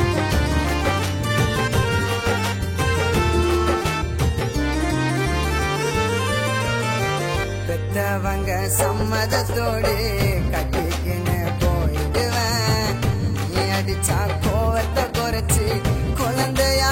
பெத்தவங்க சம்மதத்தோடு கட்டிக்கின்னு போயிடுவேன் நீ அடிச்சா கோவத்தை குறைச்சி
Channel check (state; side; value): identical; both; correlation 1.00